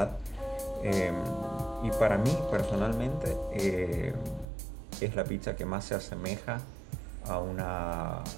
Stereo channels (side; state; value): left; drops out; at 4.5 s